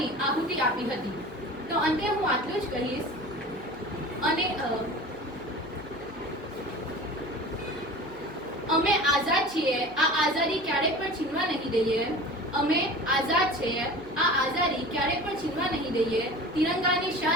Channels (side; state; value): right; noise; hum, 22 dB below the sound